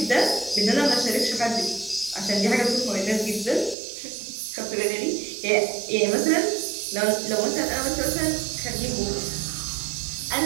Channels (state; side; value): drops out; left; at 3.8 s